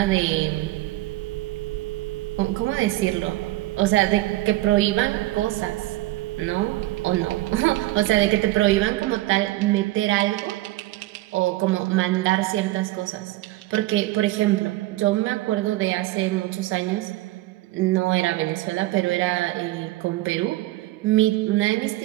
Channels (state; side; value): quieter; left; 17.7 dB